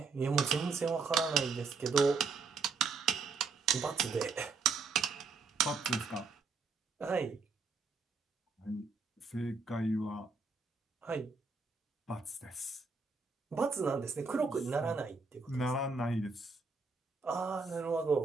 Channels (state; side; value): quieter; left; 4.5 dB